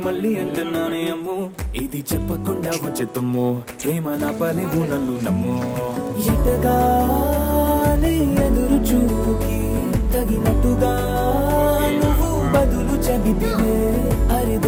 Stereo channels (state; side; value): identical; both; correlation 1.00